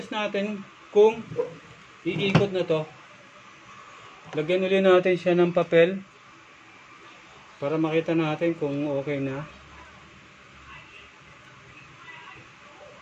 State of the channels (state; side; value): identical; both; correlation 1.00